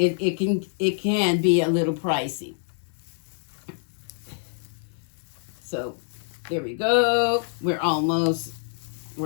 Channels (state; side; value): silent; right; digital silence